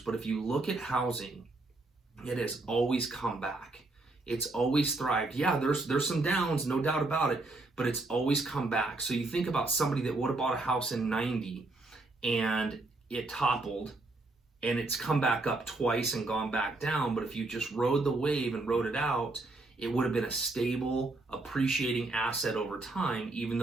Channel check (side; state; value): left; quieter; 3.1 dB